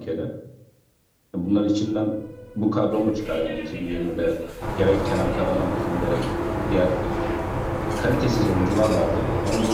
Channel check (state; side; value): identical; both; correlation 1.00